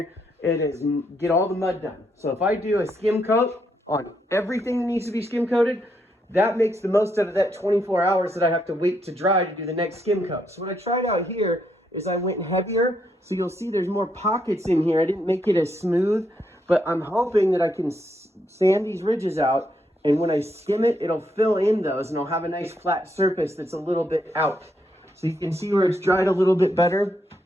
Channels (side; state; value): both; normal; correlation 0.77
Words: and get all the mud done. So if I do a skim coat on everything that needs to be skim coated, that makes the most out of that 24 hours that I have to wait to dry to do the next skim coat. So what I tried out here is I went heavier. So you'll see there's more pockets in here. I didn't make it as smooth, but I'm hoping that I can sand these ridges out, and when I skim it, it'll fill in those, and I'll have a nice flat surface that's a little bit out. So you can see where it's dried a little bit better.